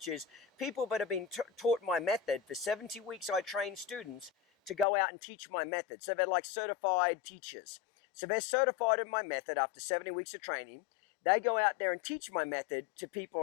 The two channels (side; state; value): right; drops out; at 4.9 s